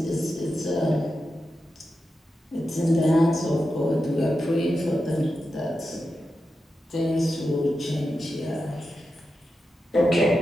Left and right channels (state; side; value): normal; both; correlation 0.89